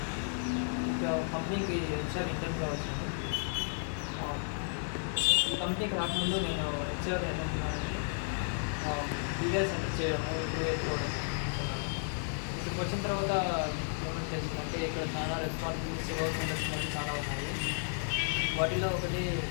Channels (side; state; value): right; silent; digital silence